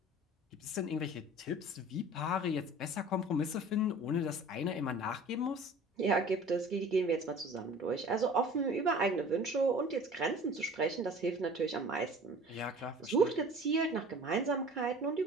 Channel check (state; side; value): normal; both; correlation 0.45